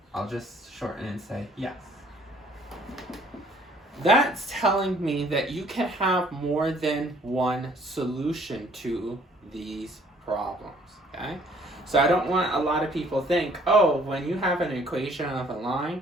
I'll just shorten and say yes. That's telling me that you can have more than one solution to these problems, okay? So I don't want a lot of people think, oh, when you have an equation of a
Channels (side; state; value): both; normal; correlation 0.59